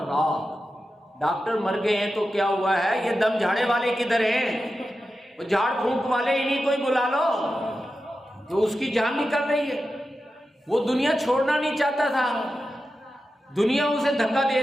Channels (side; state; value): both; normal; correlation 0.91